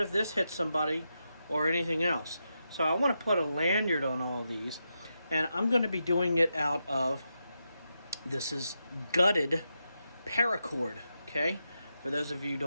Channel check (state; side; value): inverted; both; correlation -0.86